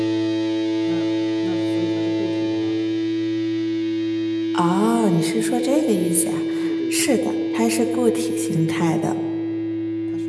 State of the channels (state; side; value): identical; both; correlation 1.00